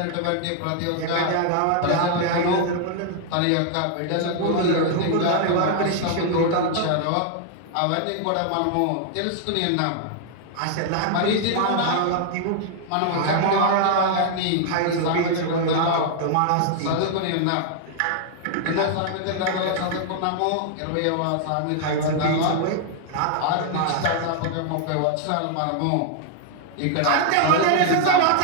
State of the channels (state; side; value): different; both; correlation 0.00